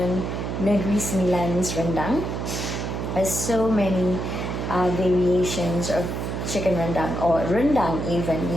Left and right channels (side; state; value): right; noise; hum, 3 dB below the sound